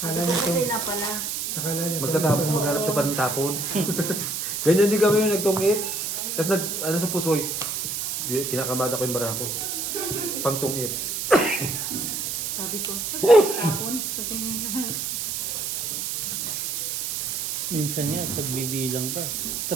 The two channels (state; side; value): noise; right; hiss, 2 dB below the sound